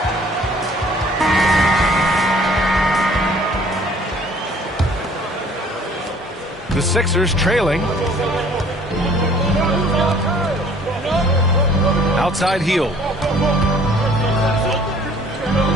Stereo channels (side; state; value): both; normal; correlation 0.55